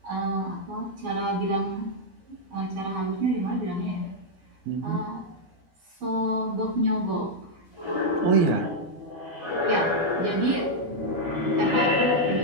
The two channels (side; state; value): left; late; 12 ms